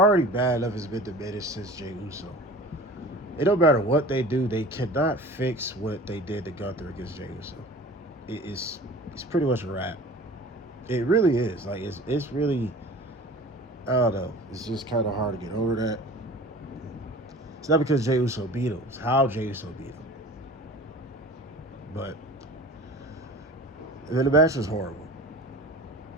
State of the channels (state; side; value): normal; both; correlation 0.40